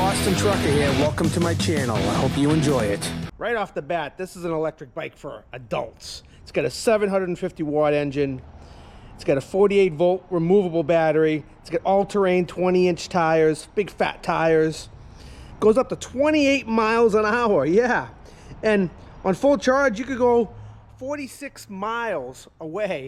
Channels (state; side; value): identical; both; correlation 1.00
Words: Trucker here. Welcome to my channel. I hope you enjoy it. Right off the bat, this is an electric bike for adults. It's got a 750 watt engine. It's got a 48 volt removable battery. It's got all-terrain 20-inch tires, big fat tires. Goes up to 28 miles an hour. Yeah. And on full charge, you could go 46 miles